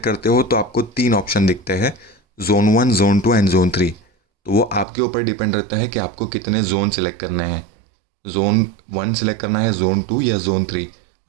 करते हो तो आपको 3 ऑप्शन दिखते हैं, जोन 1, जोन 2 एंड जोन 3। तो वो आपके ऊपर डिपेंड रहता है कि आपको कितने जोन सिलेक्ट करने हैं, जोन 1 सिलेक्ट करना है, जोन 2 या जोन 3।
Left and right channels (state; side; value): drops out; left; at 4.9 s